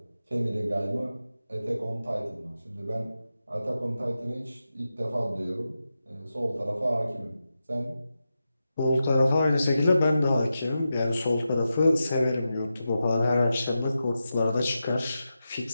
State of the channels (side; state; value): both; inverted; correlation -0.90